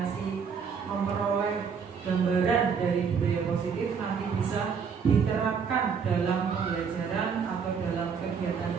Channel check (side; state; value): left; quieter; 6.3 dB